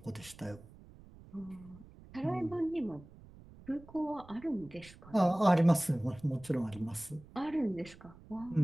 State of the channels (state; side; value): noise; right; rumble, 20 dB below the sound